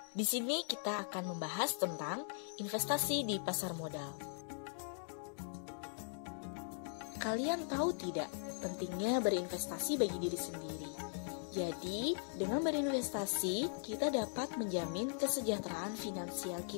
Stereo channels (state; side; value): silent; right; digital silence